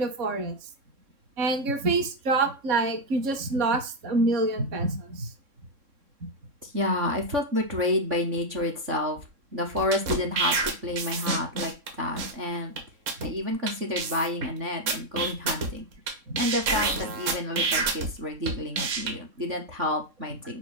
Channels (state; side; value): late; left; 3.6 ms